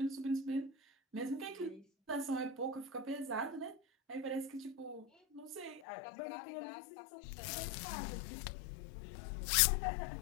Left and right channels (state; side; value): drops out; right; at 5.8 s